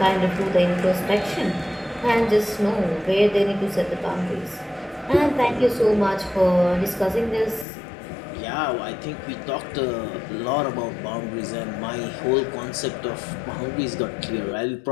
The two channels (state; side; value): drops out; right; at 7.7 s